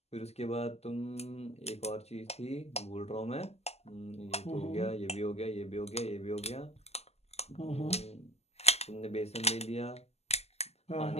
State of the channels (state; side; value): late; right; 0.30 ms